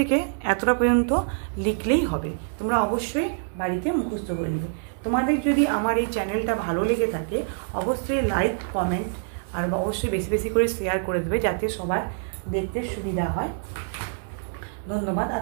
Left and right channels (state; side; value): silent; left; digital silence